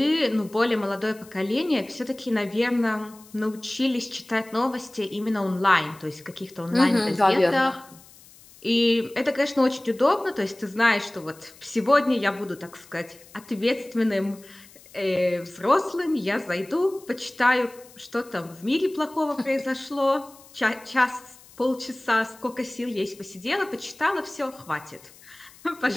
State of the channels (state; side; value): noise; left; hiss, 23 dB below the sound